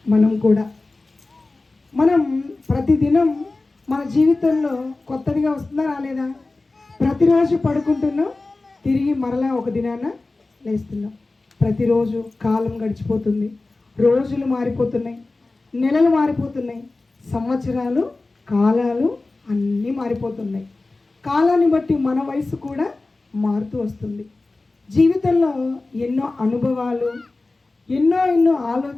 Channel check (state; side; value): quieter; right; 3.3 dB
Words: మనం కూడా ప్రతిదినం మన జీవితంలో కొత్తదిగా వస్తుందా రాలేదా? ప్రతిరోజు పడుకుంటున్నాం, తిరిగి మరలా ఒక దినాన లేస్తున్నాం. ప్రతిరోజు కాలం గడిచిపోతుంది, రోజులు మారిపోతున్నాయి, నెలలు మారిపోతున్నాయి, సంవత్సరాలు, కాలాలు అన్నీ మారిపోతున్నాయి. కాలాన్ని బట్టి మన వయసు కూడా మారుతూ వస్తుంది. జీవితంలో ఎన్నో అనుభవాలు, ఎన్నో